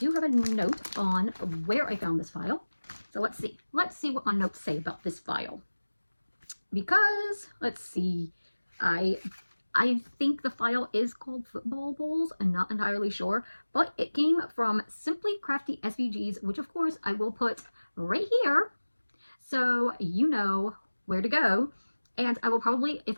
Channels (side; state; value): both; inverted; correlation -1.00